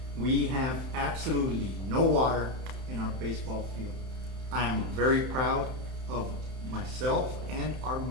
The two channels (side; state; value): left; late; 31 ms